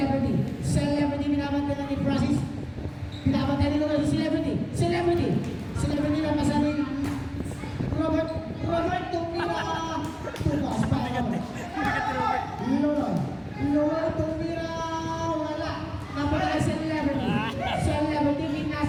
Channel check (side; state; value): both; identical; correlation 1.00